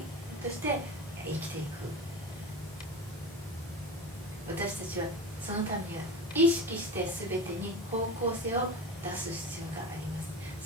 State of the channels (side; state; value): both; normal; correlation 0.29